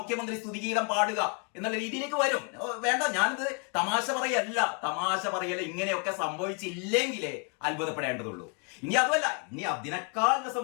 സ്തുതിഗീതം പാടുക എന്നുള്ള രീതിയിലേക്ക് വരും. വേണ്ട, ഞാനിത് തമാശ പറയല്ല. ഇങ്ങനെയൊക്കെ സംഭവിച്ചില്ലെങ്കിലേ അത്ഭുതപ്പെടേണ്ടതുള്ളൂ. ഇനി അതുമല്ല, ഇനി അതിനേക്കാൾ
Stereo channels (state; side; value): quieter; right; 37.3 dB